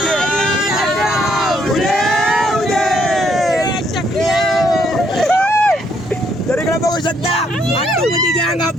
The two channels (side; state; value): both; normal; correlation 0.70